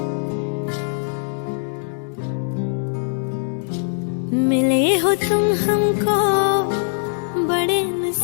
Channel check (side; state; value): right; silent; digital silence